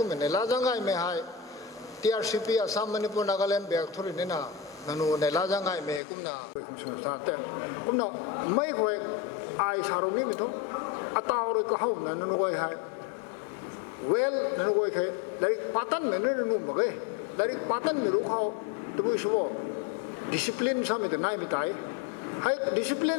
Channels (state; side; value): drops out; right; at 6.0 s